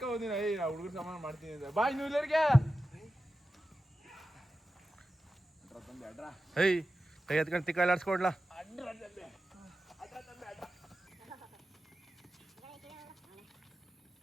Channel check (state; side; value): normal; both; correlation 0.93